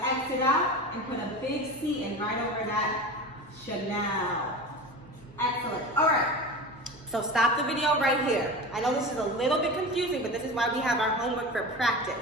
X it out and put a big C in right over that Chanel. Excellent. All right. So stop the video right here. I know this is a little bit confusing, but this is why we have our homework for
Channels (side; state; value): both; normal; correlation 0.30